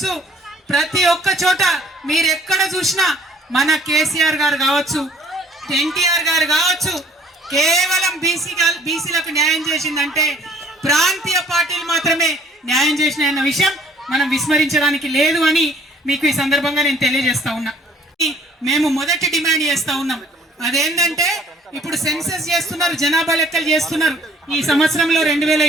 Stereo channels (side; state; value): both; normal; correlation 0.58